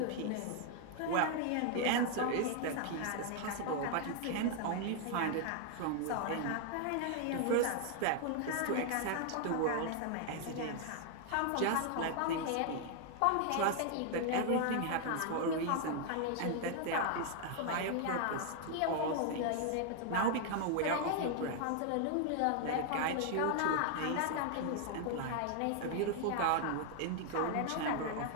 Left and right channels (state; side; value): different; both; correlation 0.00